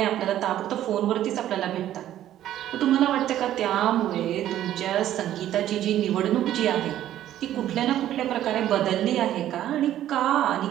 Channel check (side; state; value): left; quieter; 12.3 dB